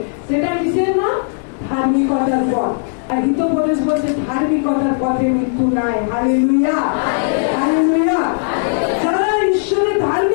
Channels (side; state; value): right; silent; digital silence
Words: সেটা কিসের নাম? ধার্মিকতার পথ। আর হিতোপদেশ বলছে ধার্মিকতার পথে মৃত্যু নাই। Hallelujah, hallelujah. যারা ঈশ্বরের